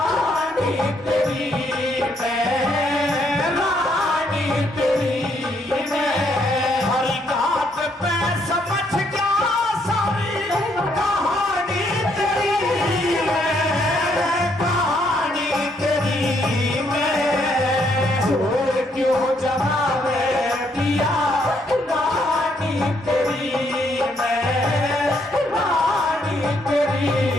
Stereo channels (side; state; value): both; normal; correlation 0.72